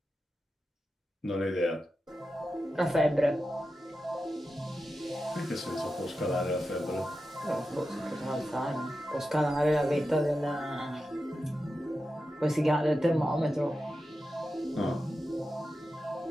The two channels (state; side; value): normal; both; correlation 0.91